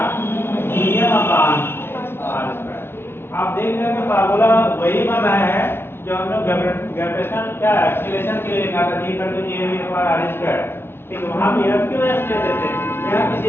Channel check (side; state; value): right; late; 0.11 ms